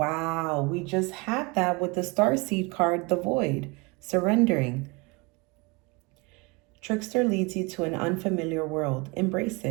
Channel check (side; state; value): left; quieter; 27.5 dB